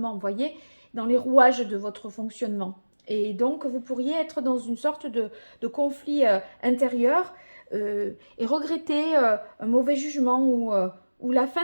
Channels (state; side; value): inverted; both; correlation -1.00